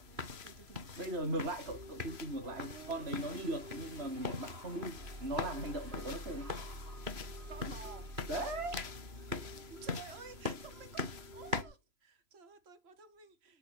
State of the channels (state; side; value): late; left; 3.0 ms